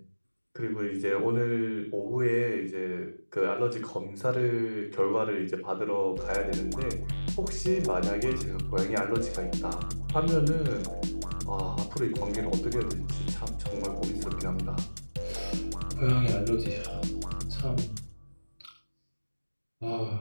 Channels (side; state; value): both; inverted; correlation -1.00